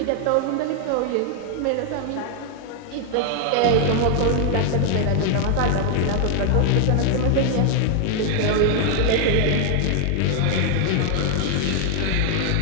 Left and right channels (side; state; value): both; different; correlation 0.00